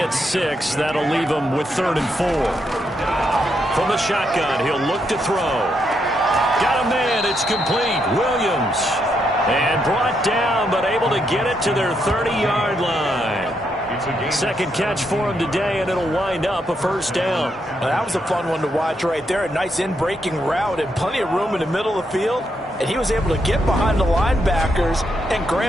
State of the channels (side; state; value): both; normal; correlation 0.79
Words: 6. That'll leave them with 3rd and 4. From the shotgun, he'll look to throw. Got a man. It's complete. Williams. And brought down, but able to get it to their 30-yard line. Second catch for him today, and it'll wind up a first down. Well, that was a fun one to watch right there. A nice in-breaking route and plenty of room in the middle of the field. And he was able to get behind the linebackers and